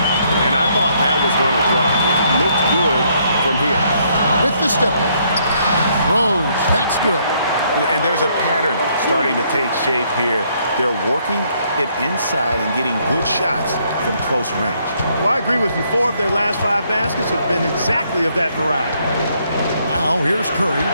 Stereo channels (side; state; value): both; inverted; correlation -0.70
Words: And I thought that was going to drop. It looked good from here. With the step back. Rose, that's good. And there's a pattern starting to take shape here. They're working it inside and getting good shots from close range. Well, I agree with you. 4 of their last 5 baskets have been exactly of that variety. Now here's Curry.